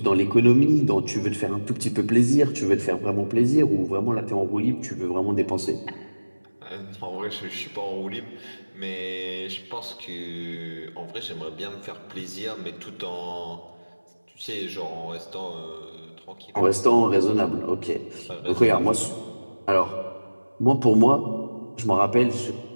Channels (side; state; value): both; inverted; correlation -1.00